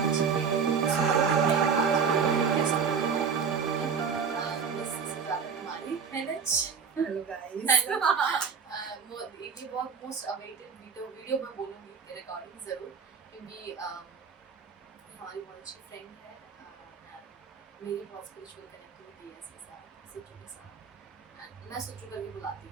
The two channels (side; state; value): left; quieter; 6.1 dB